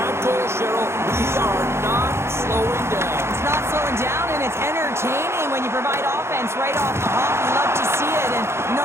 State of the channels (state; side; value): late; left; 0.13 ms